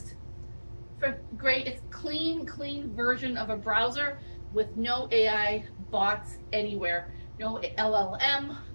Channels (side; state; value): both; inverted; correlation -1.00